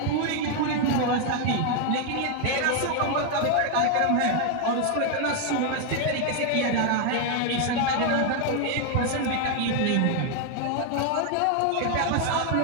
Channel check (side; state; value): both; different; correlation 0.01